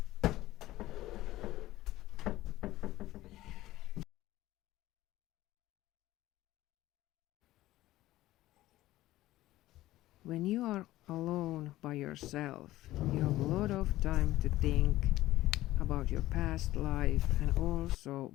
When you are alone by yourself, you have a lot of time to think about your past life and also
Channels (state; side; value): quieter; right; 16.1 dB